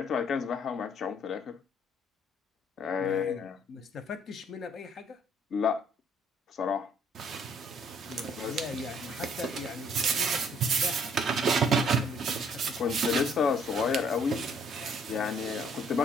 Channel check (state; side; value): normal; both; correlation 0.63